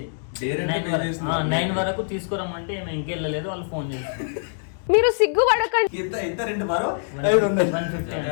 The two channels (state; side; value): silent; right; digital silence